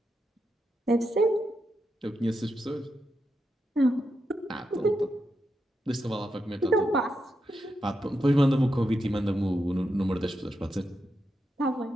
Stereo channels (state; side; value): normal; both; correlation 0.85